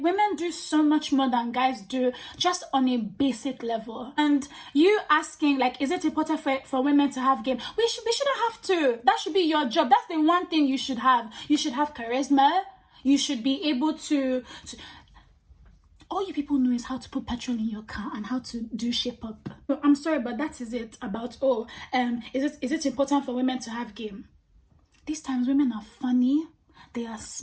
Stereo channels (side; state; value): both; identical; correlation 1.00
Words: do so much more than guys do, just on a basic level. And you asking like, is it important for women to have game? We shouldn't have to. That should be your job. That's the one thing you should have. You should have charisma. You should be able to all you people know is how to put petrol in your car and how to do shape up. I'm sorry, but that is it about, is it important for women to have game? These times women are funny, they are